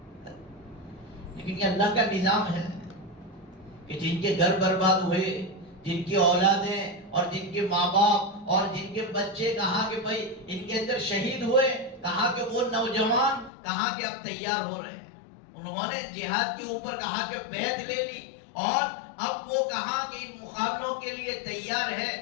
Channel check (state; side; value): drops out; right; at 13.5 s